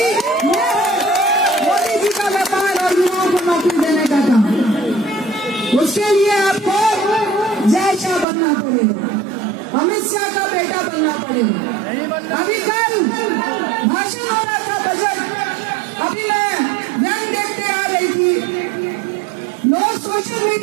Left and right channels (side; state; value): left; drops out; at 8.2 s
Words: मोदी जी का व्यापार और युवाओं को नौकरी देने का काम। उसके लिए आपको जय शाह बनना पड़ेगा, अमित शाह का बेटा बनना पड़ेगा। अभी कल भाषण हो रहा था बजट, अभी मैं व्यंग देखते आ रही थी, लोग सोशल